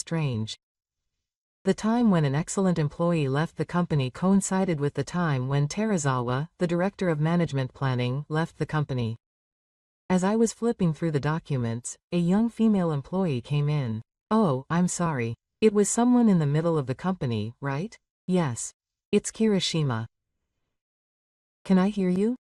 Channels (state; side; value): identical; both; correlation 1.00